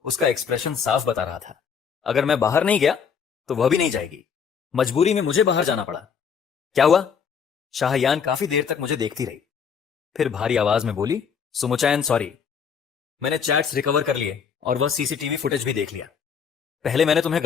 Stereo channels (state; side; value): quieter; right; 6.8 dB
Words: उसका एक्सप्रेशन साफ बता रहा था, अगर मैं बाहर नहीं गया तो वह भी नहीं जाएगी। मजबूरी में मुझे बाहर जाना पड़ा। क्या हुआ? शाहयान काफी देर तक मुझे देखती रही, फिर भारी आवाज में बोली, सुमुचैन सॉरी, मैंने चैट्स रिकवर कर लिए और वह सीसीटीवी फुटेज भी देख लिया। पहले मैंने तुम्हें